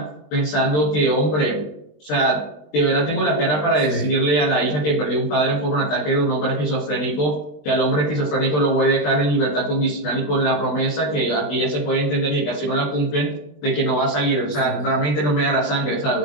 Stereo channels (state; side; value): late; right; 20 ms